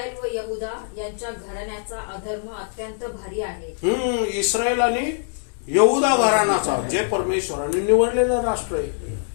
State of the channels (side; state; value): right; silent; 63 dB below the other